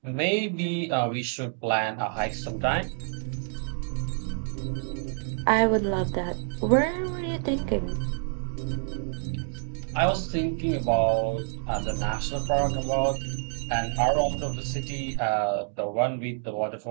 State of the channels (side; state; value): left; silent; 60 dB below the other